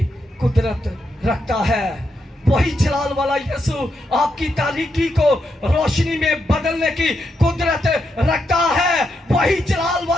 कुदरत रखता है। वही जलाल वाला यीशु आपकी तारीकी को रोशनी में बदलने की कुदरत रखता है। वही जलाल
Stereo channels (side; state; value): both; normal; correlation 0.82